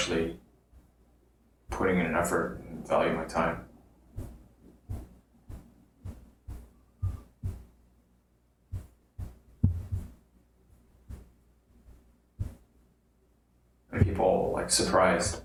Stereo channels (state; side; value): identical; both; correlation 1.00